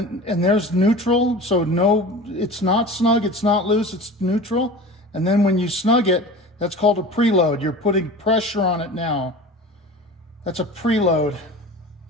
there's neutral, so no, it's not snug, it's not loose, it's neutral. And then when you snug it, that's called a preload. You're putting pressure on it now. That's a preload.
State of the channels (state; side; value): normal; both; correlation 0.36